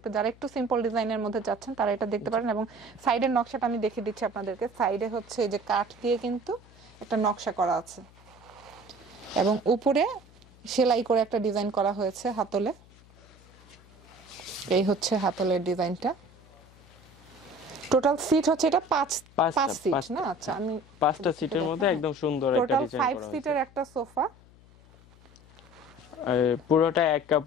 যারা একটু সিম্পল ডিজাইনের মধ্যে যাচ্ছেন তারা এটা দেখতে পারেন। এবং সাইডের নকশাটা আমি দেখিয়ে দিচ্ছি আপনাদেরকে। সাইডে হচ্ছে এই যে কাঠ দিয়ে কিন্তু একটা নকশা করা আছে, এবং উপরে সেলাই করে একটা ডিজাইন করা হয়েছে হাতলে। এই হচ্ছে হাতলের ডিজাইনটা। টোটাল সিট হচ্ছে এটা 5 সিট না? আচ্ছা, আমি 5টা সিটের মধ্যে একদম সুন্দর একটা ডিজাইন করা হয়েছে। 5 সিটের একটা সোফা। পুরোটা এক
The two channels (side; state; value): left; noise; hum, 25 dB below the sound